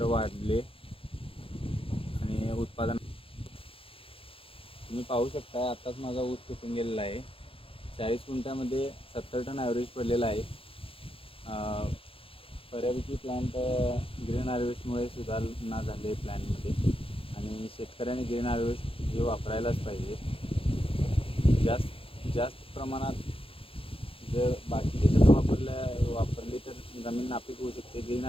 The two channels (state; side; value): late; right; 0.27 ms